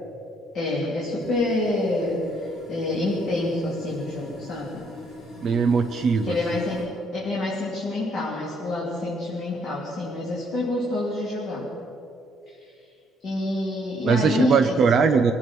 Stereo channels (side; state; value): both; normal; correlation 0.69